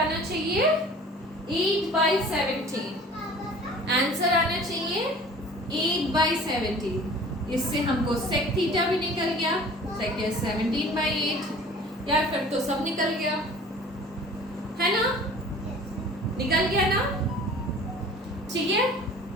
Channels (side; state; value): both; normal; correlation 0.46